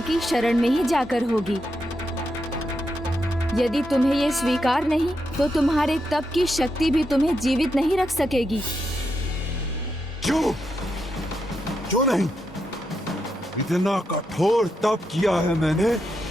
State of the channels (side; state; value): both; normal; correlation 0.84